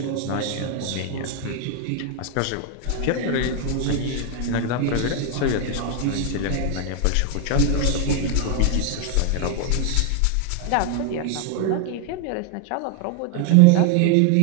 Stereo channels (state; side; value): different; both; correlation 0.01